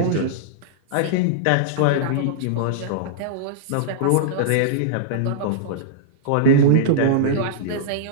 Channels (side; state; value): both; different; correlation -0.02